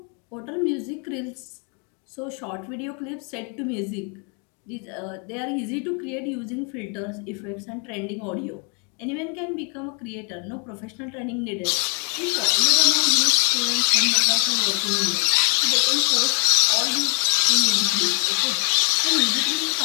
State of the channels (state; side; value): quieter; right; 39.7 dB